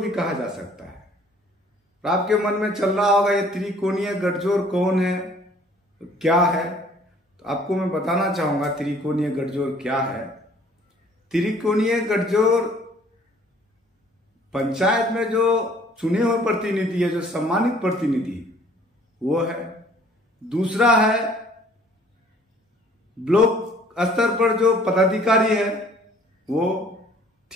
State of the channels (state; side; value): normal; both; correlation 0.56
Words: कहा जा सकता है। तो आपके मन में चल रहा होगा ये त्रिकोणीय गठजोड़ कौन है, क्या है। तो आपको मैं बताना चाहूंगा त्रिकोणीय गठजोड़ क्या है। त्रिकोणीय गठजोड़ पंचायत में जो चुने हुए प्रतिनिधि है, जो सम्मानित प्रतिनिधि वो है। दूसरा है ब्लॉक स्तर पर जो पदाधिकारी है वो।